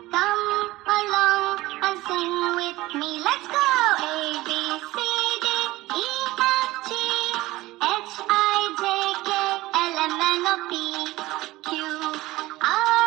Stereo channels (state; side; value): quieter; left; 18.3 dB